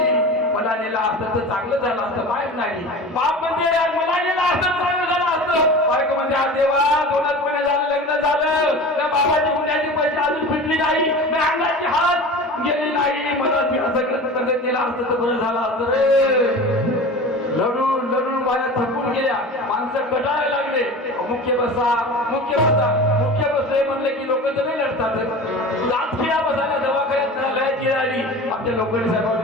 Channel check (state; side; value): normal; both; correlation 0.35